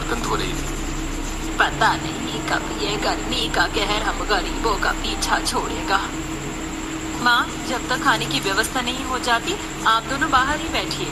धो रही थी। पता नहीं कब ये गर्मी का कहर हम गरीबों का पीछा छोड़ेगा। माँ, जब तक खाने की व्यवस्था नहीं हो जाती आप दोनों बाहर ही बैठिए।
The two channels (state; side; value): identical; both; correlation 1.00